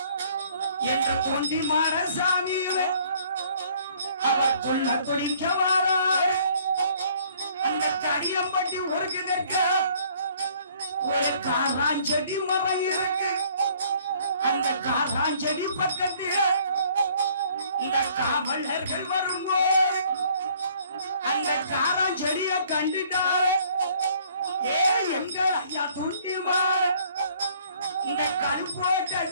என்று தொண்டி மாரசாமியிலே அவர் சொல்ல தொழிக்க வாரார் அந்த தடியம்பட்டி ஒருங்கிருக்க ஒரு காராஞ்செடி மரம் இருக்கு அந்த காராஞ்செடி பக்கத்தில் இந்த காவலர்கள் வரும்போது அந்த காராஞ்செடிய கண்டுட்டாரு ஏ எங்கள் ஐயா தொண்டி மாற இந்த கருப்போட்ட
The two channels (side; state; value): both; inverted; correlation -0.59